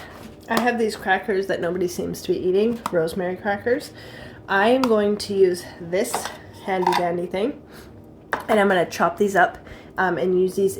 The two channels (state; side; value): identical; both; correlation 1.00